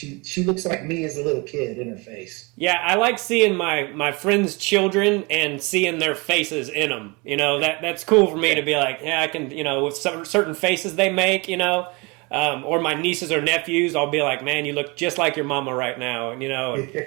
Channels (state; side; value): quieter; left; 27.7 dB